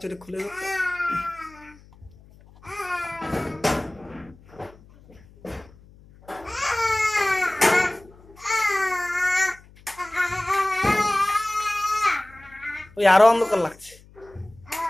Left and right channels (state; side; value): noise; left; hum, 25 dB below the sound